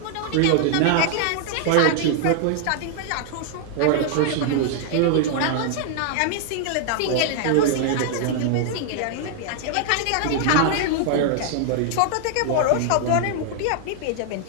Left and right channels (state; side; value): different; both; correlation 0.00